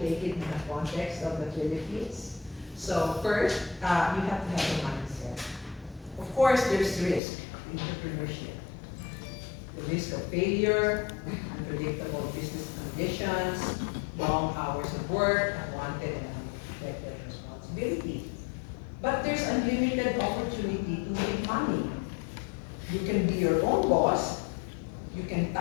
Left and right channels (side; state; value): right; drops out; at 7.2 s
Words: take it in the context of the Philippines. So first, you have to have a mindset. Of course, there's risk in entrepreneurship. The risk of failure, unpredictable business conditions, long hours of work, unwanted and unexpected responsibility. But there's unlimited opportunity to make money. You can be your own boss, you can